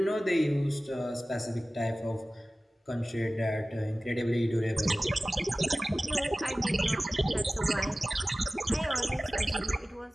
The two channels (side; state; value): both; normal; correlation 0.97